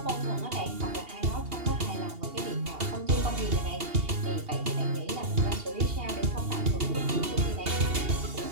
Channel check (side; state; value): left; late; 2.8 ms